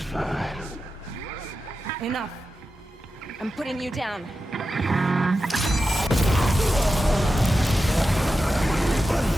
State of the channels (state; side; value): normal; both; correlation 0.91